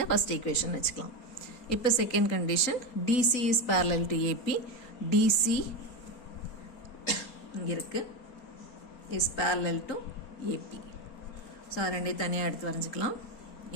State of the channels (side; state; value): right; late; 4.3 ms